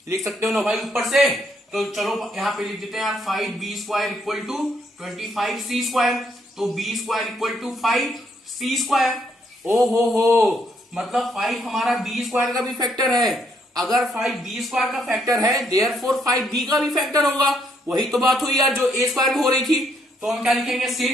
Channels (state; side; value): normal; both; correlation 0.72